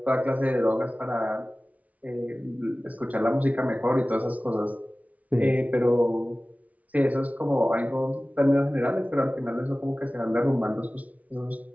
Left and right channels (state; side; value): late; left; 0.070 ms